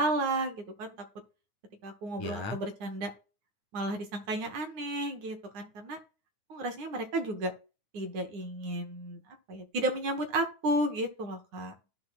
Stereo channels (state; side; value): late; left; 9.5 ms